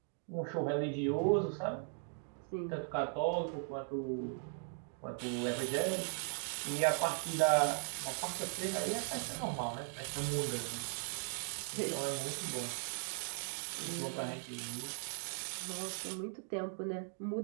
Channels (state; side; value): silent; left; 52 dB below the other